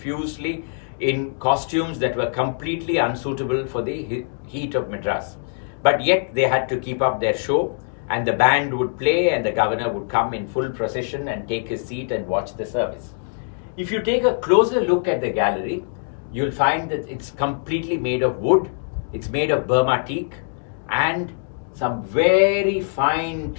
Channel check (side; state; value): right; silent; digital silence